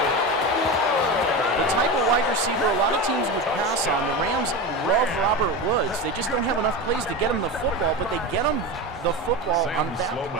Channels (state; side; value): normal; both; correlation 0.22